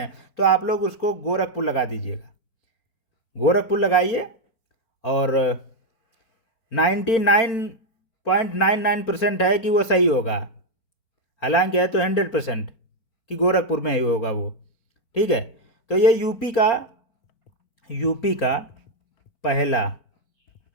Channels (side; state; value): right; late; 4.5 ms